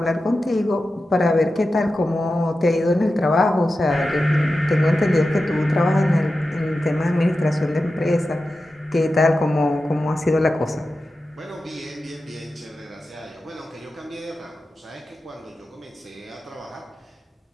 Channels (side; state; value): both; normal; correlation 0.92